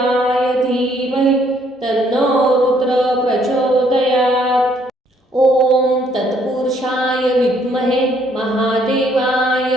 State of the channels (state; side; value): normal; both; correlation 0.66